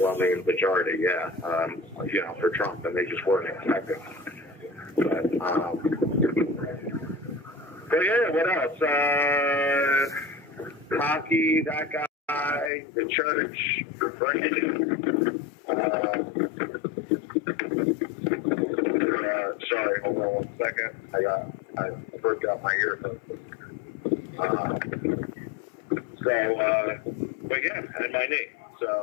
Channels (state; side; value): drops out; right; at 12.7 s